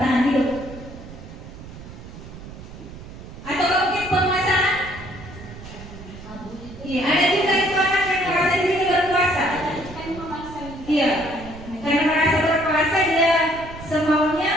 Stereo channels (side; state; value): right; noise; rumble, 14 dB below the sound